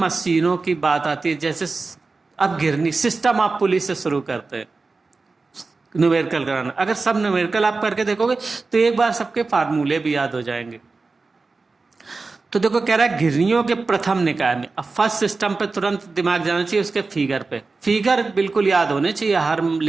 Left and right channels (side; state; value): left; quieter; 3.9 dB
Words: की बात आती है, जैसे अब गिरनी सिस्टम आप पुलिस से शुरू करते हैं न्यूमेरिकल कराना। अगर सब न्यूमेरिकल आप करके देखोगे तो एक बार सबके फार्मूले भी याद हो जाएंगे। तो देखो कह रहा है घिरनियों के प्रथम निकाय में, अब फर्स्ट सिस्टम पे तुरंत दिमाग जाना चाहिए, उसके फिगर पे, फिगर बिल्कुल याद होने चाहिए हर